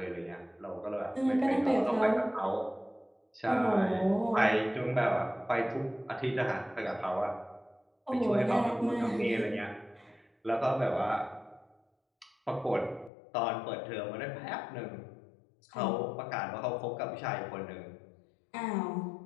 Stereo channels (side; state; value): right; drops out; at 13.1 s